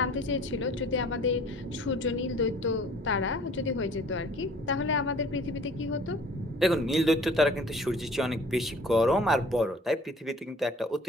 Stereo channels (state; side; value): normal; both; correlation 0.50